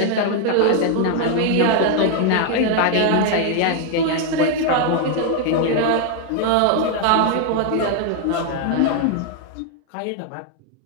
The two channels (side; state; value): both; different; correlation 0.00